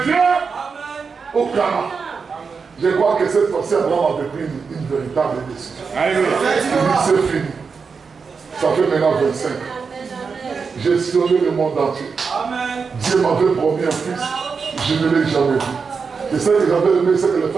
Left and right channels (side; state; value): left; quieter; 5.3 dB